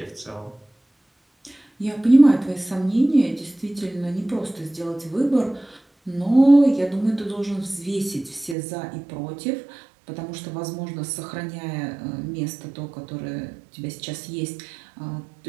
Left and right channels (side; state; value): left; drops out; at 8.6 s